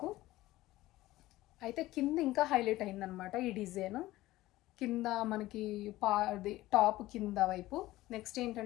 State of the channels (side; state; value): right; quieter; 17.0 dB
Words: అయితే కింద ఇంకా హైలైట్ అయిందనమాట ఈ డిజైన్. కింద మనకి టాప్ కింద వైపు. నెక్స్ట్